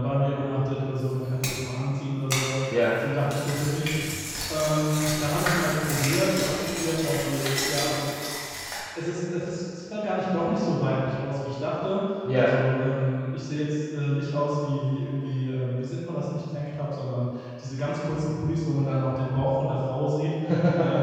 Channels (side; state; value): both; identical; correlation 1.00